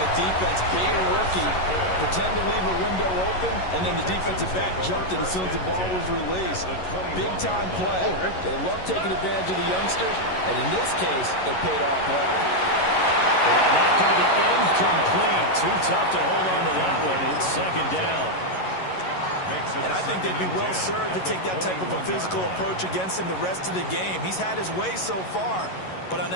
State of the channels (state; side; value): late; right; 11 ms